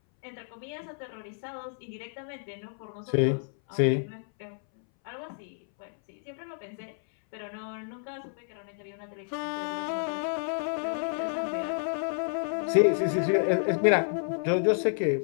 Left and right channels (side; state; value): right; silent; 58 dB below the other